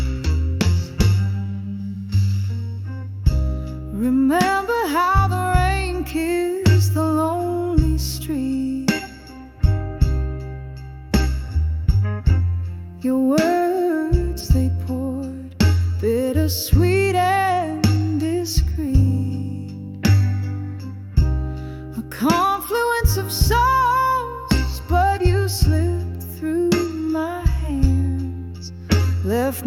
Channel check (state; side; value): identical; both; correlation 1.00